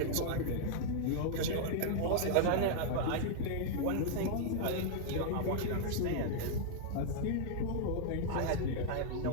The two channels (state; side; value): different; both; correlation -0.01